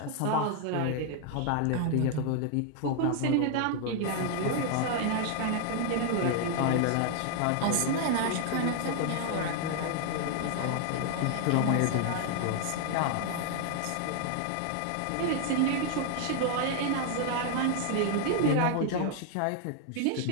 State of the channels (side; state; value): both; different; correlation 0.00